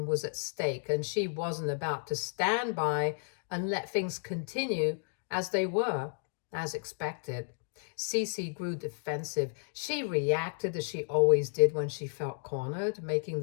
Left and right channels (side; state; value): right; silent; digital silence